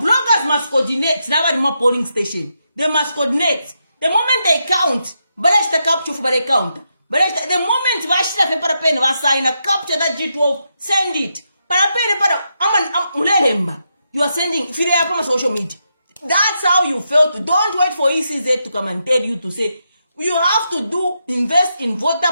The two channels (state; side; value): inverted; both; correlation -0.83